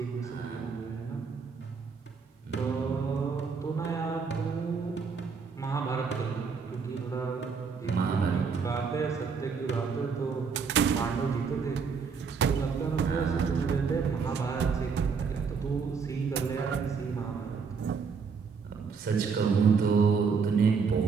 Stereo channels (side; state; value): left; quieter; 5.6 dB